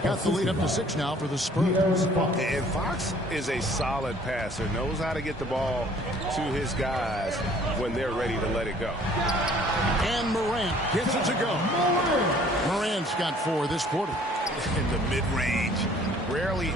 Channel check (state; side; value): normal; both; correlation 0.56